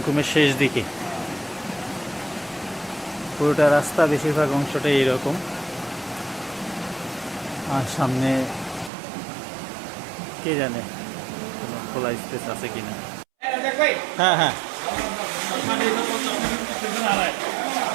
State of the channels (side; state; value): left; drops out; at 8.9 s